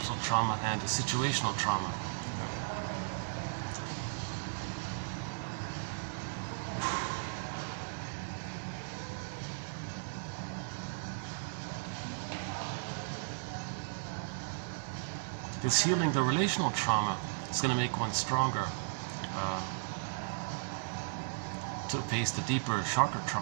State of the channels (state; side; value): silent; left; digital silence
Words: trauma and the situational trauma. This healing the relational trauma is going to make one stronger to face the deeper, sharper